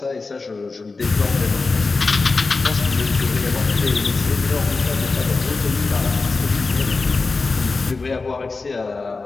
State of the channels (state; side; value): quieter; right; 4.0 dB